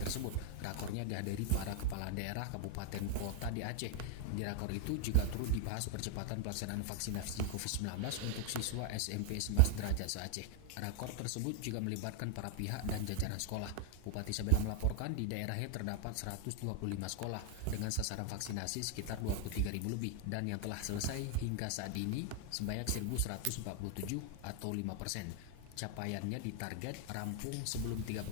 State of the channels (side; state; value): both; different; correlation 0.00